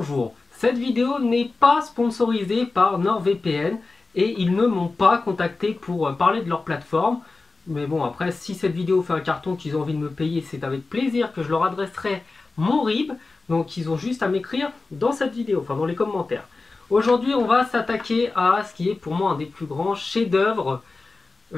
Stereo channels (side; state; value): right; quieter; 3.7 dB